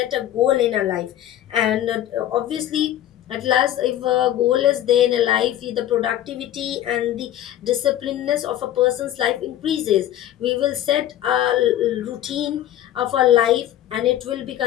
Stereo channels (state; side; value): quieter; right; 12.4 dB